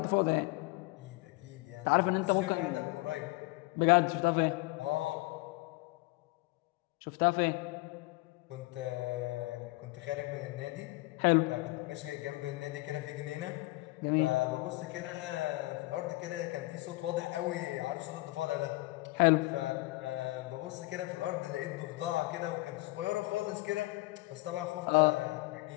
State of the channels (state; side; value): quieter; right; 21.8 dB